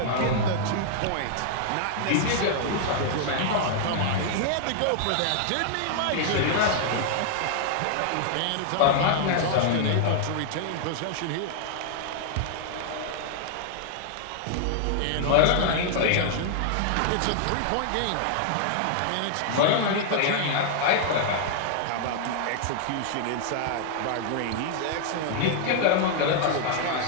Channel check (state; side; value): different; both; correlation -0.01